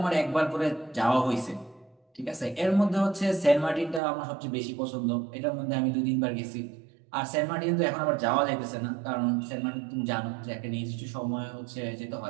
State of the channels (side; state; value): left; drops out; at 4.0 s